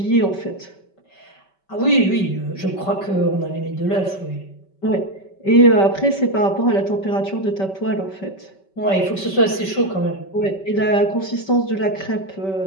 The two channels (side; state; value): right; late; 5.2 ms